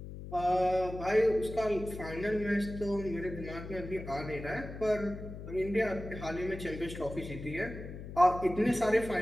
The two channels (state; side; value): noise; left; hum, 11 dB below the sound